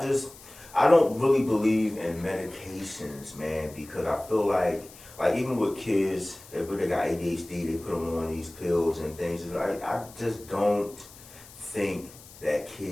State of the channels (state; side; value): noise; left; hiss, 20 dB below the sound